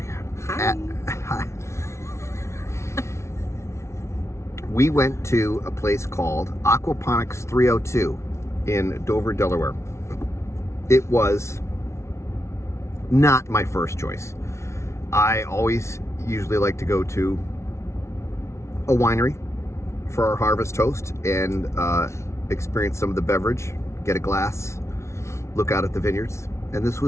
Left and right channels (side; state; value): right; late; 0.13 ms